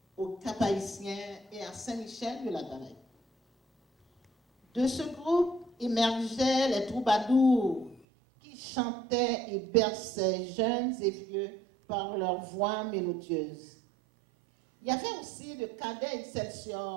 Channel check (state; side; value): drops out; left; at 8.1 s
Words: au Cap-Haïtien et à Saint-Michel de la Galaye. De ce groupe émergeaient les troubadours qui chantaient et berçaient jeunes et vieux par leur voix mélodieuse. Il y avait aussi le cadet